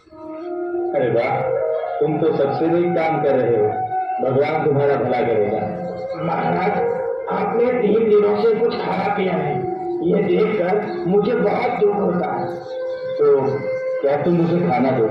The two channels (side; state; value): both; identical; correlation 1.00